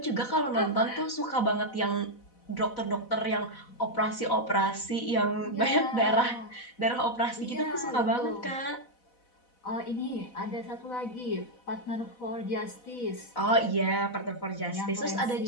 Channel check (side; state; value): right; late; 4.1 ms